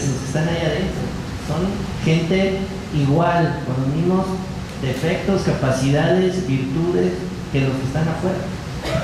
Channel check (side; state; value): both; identical; correlation 1.00